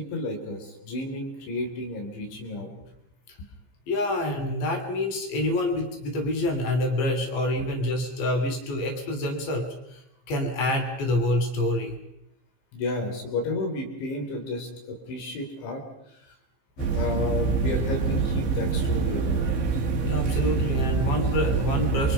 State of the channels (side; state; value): right; late; 15 ms